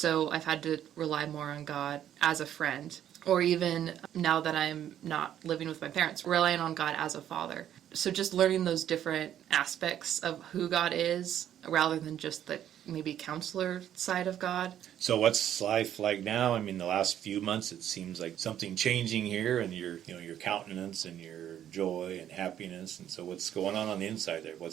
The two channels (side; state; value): left; quieter; 10.7 dB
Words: I've had to rely more on God as a friend. Or even now that I'm not living with my parents, relying on God as a father. So just learning those different aspects of who God is rather than just the maybe counselor side of God. So what's life like now? I mean, the last few months, it seems like something changing here, and your countenance and your joy and happiness. And so what's going on the inside there?